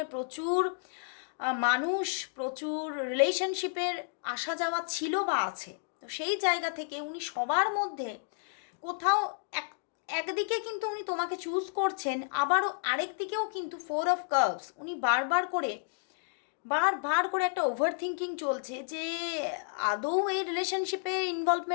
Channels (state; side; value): silent; right; digital silence